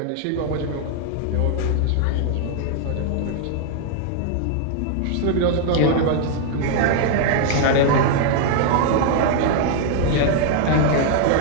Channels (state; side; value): different; both; correlation 0.00